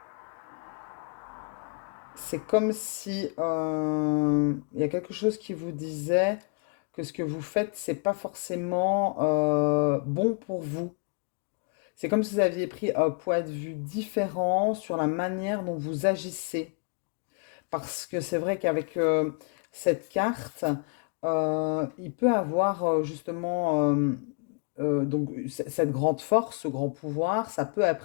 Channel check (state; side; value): quieter; right; 37.7 dB